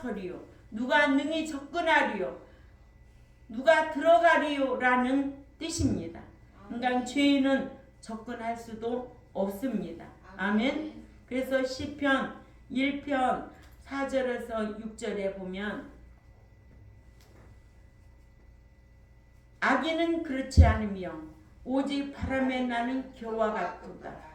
누가 능히 접근하리요? 누가 들어가리요라는 뜻입니다. 그러니까 죄인은 접근할 수도 없습니다. 아멘. 그래서 시편 1편 4절에서 6절에 보면 악인은 그렇지 않으며 오직 바람에 나는 겨와 같도다.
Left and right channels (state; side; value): identical; both; correlation 1.00